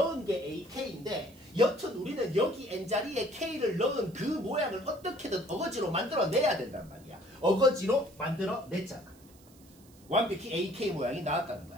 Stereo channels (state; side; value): noise; right; hiss, 27 dB below the sound